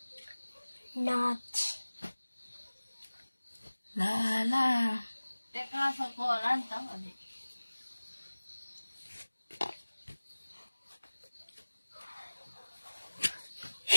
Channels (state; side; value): inverted; both; correlation -1.00